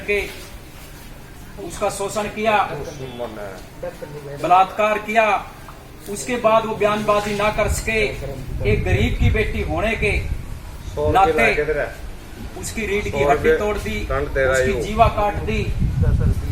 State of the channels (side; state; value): both; identical; correlation 1.00